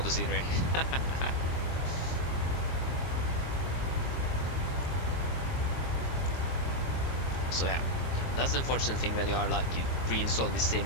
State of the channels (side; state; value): right; late; 23 ms